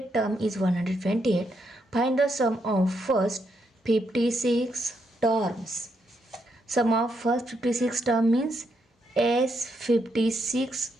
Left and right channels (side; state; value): both; normal; correlation 0.79